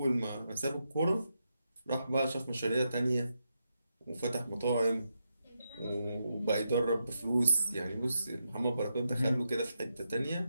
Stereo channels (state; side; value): inverted; both; correlation -0.85